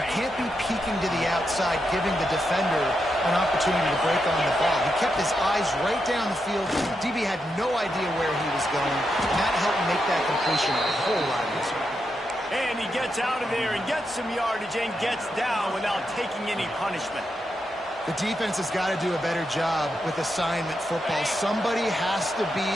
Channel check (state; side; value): normal; both; correlation 0.84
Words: can't be peeking to the outside, giving the defender an opportunity to break on the ball. He kept his eyes right down the field. DB had no idea where he was going, and that helped make that completion a whole lot easier. And he gets out of there and gets some yardage and gets down without taking any punishment. The defense has got to do a better job with assignment football. Somebody has to be